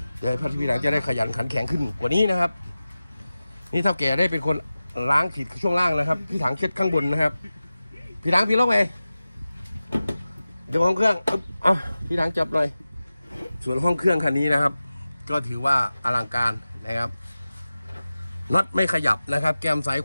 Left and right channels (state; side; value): inverted; both; correlation -0.96